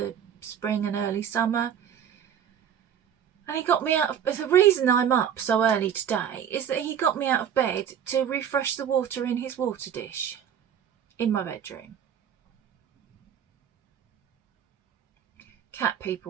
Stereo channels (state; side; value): quieter; left; 8.9 dB